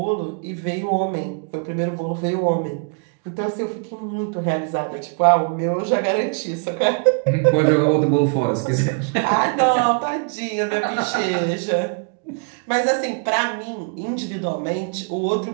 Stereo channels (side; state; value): left; quieter; 39.5 dB